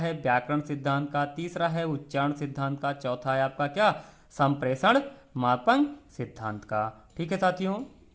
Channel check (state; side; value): identical; both; correlation 1.00